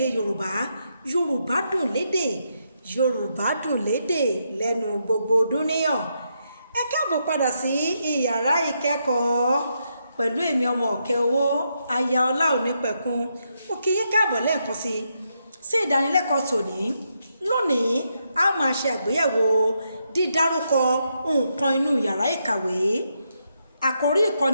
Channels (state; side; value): inverted; both; correlation -0.80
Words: yorùbá yorùbá dùn lédè yorùbá dùn lédè lẹ́nu gbogbo dúníyàn. Ẹ káàbọ̀ padà sí ìyàrá ìkẹ́kọ̀ọ́ pẹ̀lú èmi ọmọ ọ̀kẹ́ owó aya ọlá òní pẹ̀kun. Mo kí yín káàbọ̀ lẹ́ẹ̀kan sí ìdánilẹ́kọ̀ọ́ tòní. Lónìí a máa ṣe àgbéyẹ̀wò dídárúkọ nǹkan inú yàrá ìkàwé. Àkòrí